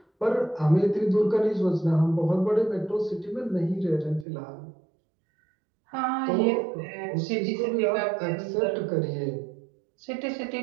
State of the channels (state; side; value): drops out; left; at 4.2 s